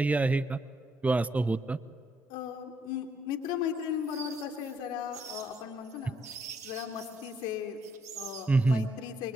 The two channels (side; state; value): both; normal; correlation 0.73